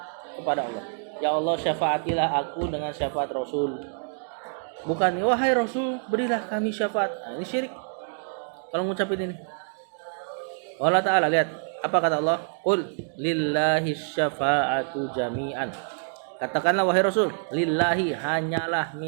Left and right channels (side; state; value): left; silent; 61 dB below the other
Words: kepada Allah. Ya Allah syafaatilah aku dengan syafaat Rasul. Bukan wahai Rasul berilah kami syafaat. Nah, ini syirik. Kalau ngucapin ini. Allah Ta'ala, lihat apa kata Allah? Qul lillahi syafa'atu jami'an. Katakanlah wahai Rasul, lillahi, hanyalah